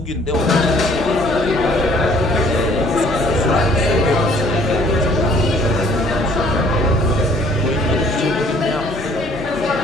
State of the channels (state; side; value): normal; both; correlation 0.58